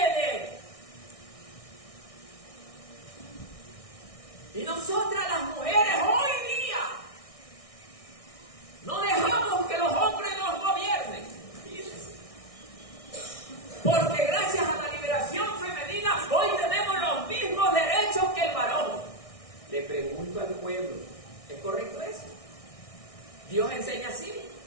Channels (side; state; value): right; late; 1.6 ms